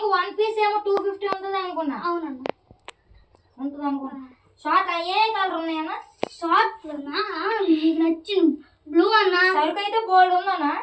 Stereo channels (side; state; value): both; identical; correlation 1.00